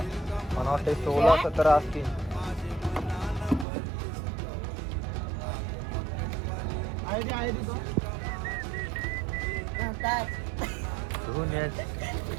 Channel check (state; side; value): drops out; left; at 3.7 s